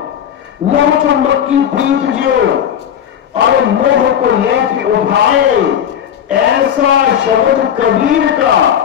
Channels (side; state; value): right; quieter; 9.3 dB